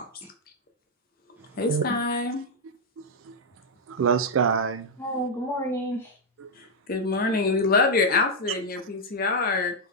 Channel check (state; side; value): normal; both; correlation -0.02